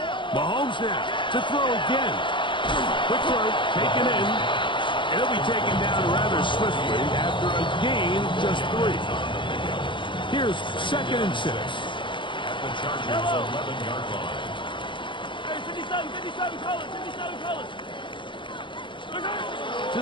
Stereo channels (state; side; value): late; right; 0.24 ms